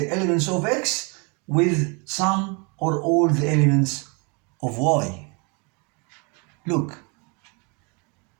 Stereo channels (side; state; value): left; quieter; 32.3 dB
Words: elements of X with some or all the elements of Y. Look.